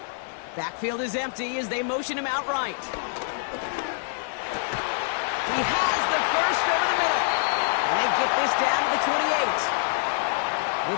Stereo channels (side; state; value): right; silent; digital silence